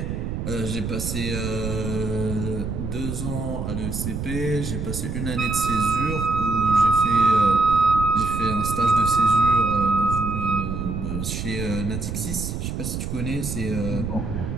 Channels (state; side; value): noise; right; rumble, 4 dB below the sound